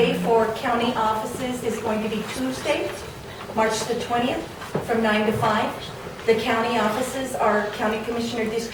for county offices is going to be Tuesday, March the 20th, from 9 to 5. The county offices are County Commissioner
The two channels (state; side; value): identical; both; correlation 1.00